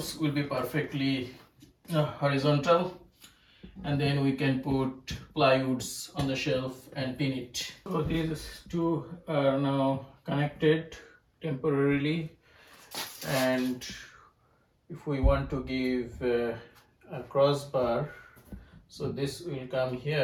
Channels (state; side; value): identical; both; correlation 1.00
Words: will be perfectly horizontal, and then we can put plywoods on the shelf and pin it. So these 2 are now connected temporarily, and if we want to give a crossbar, so this will come